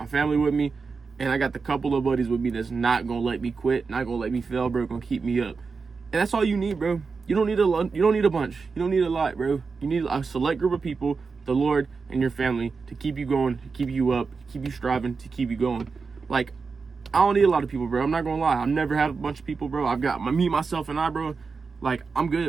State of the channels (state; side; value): quieter; left; 4.8 dB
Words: family with me, and I got the couple of buddies with me that's not gonna let me quit, not gonna let me fail, bro, gonna keep me up. And that's all you need, bro. You don't need a bunch. You don't need a lot, bro. You need a select group of people, the Lord and your family, to keep you going, to keep you up, to keep you striving, to keep you going. Like, I don't need a lot of people, bro. I'm not gonna lie. I've never had a bunch of people, bro. I've got me, myself, and I, bro. Like, I'm